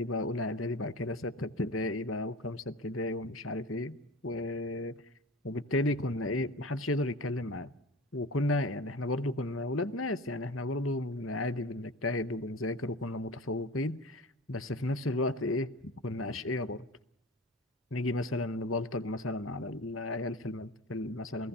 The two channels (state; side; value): normal; both; correlation 0.34